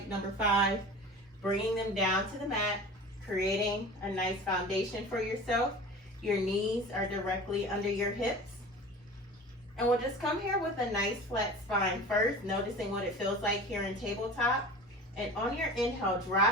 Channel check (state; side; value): normal; both; correlation 0.37